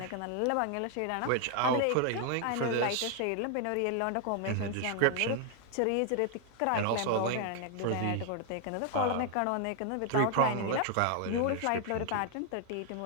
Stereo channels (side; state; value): both; different; correlation 0.00